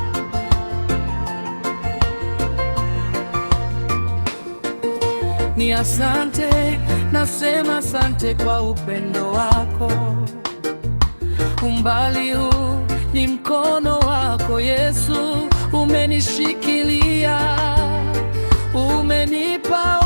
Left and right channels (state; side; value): inverted; both; correlation -1.00